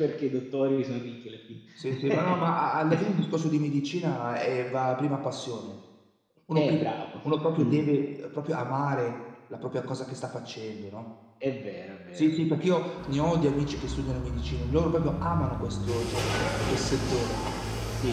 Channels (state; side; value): identical; both; correlation 1.00